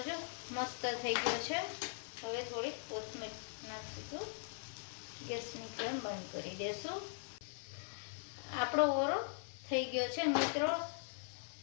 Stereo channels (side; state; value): right; silent; 51 dB below the other